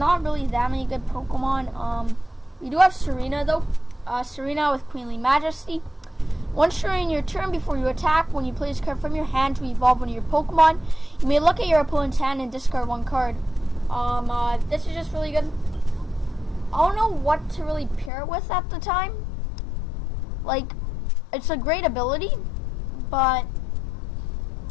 really that many good Pokemon. We do have Serena though. Serena with Queenly Majesty. Once during your turn, before you attack, when you play this card from your hand to evolve one of your Pokemon, you may look at your opponent's hand and discard 1 card. This is just really good. I don't know what to really pair it with at the time. Like, it's a great ability, but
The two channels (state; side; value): drops out; right; at 18.1 s